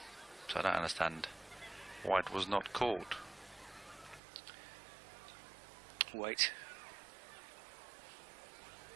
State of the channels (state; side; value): drops out; left; at 4.2 s